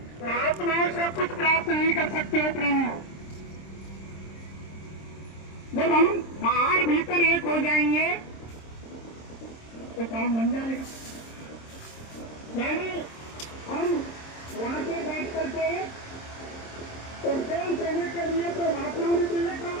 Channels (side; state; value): right; late; 26 ms